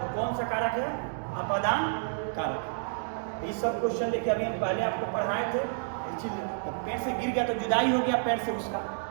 तो कौन सा कारक है, आपादान कारक। ये सब क्वेश्चन देखिए अभी हम पहले आपको पढ़ाए थे। पेड़ से गिर गया तो जुदाई हो गया पेड़ से, उसका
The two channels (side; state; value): left; silent; digital silence